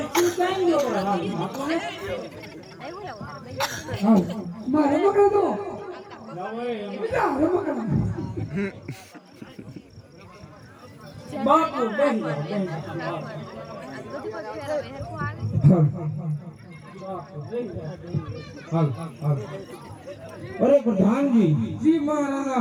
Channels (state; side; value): identical; both; correlation 1.00